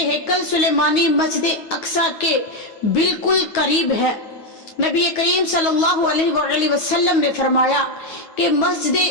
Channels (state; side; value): late; right; 9.3 ms